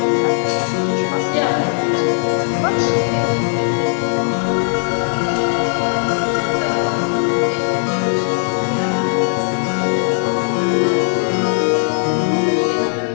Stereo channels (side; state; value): right; silent; digital silence